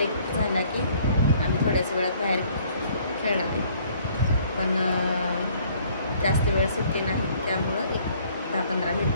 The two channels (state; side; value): inverted; both; correlation -0.60